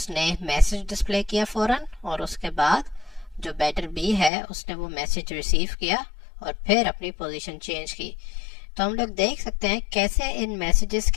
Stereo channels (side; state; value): right; drops out; at 4.3 s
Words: मैसेज डिस्प्ले किया फौरन, और उसके बाद जो बैटर बी है उसने वो मैसेज रिसीव किया और फिर अपनी पोजीशन चेंज की। तो हम लोग देख सकते हैं कैसे इन मैसेजेस